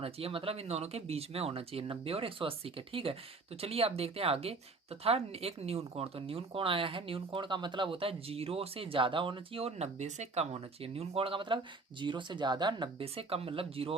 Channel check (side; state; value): left; quieter; 3.7 dB